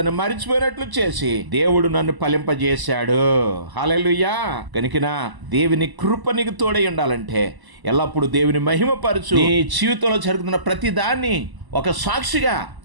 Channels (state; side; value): late; left; 1.0 ms